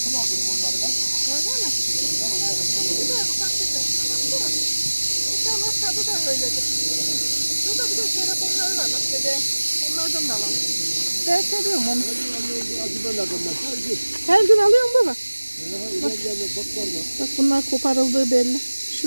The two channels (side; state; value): both; inverted; correlation -1.00